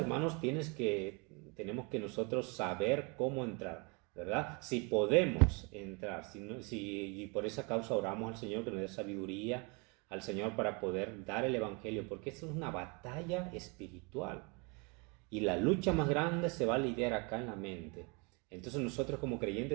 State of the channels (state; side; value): quieter; left; 31.3 dB